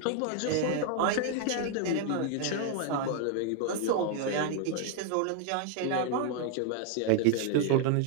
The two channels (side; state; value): both; different; correlation 0.00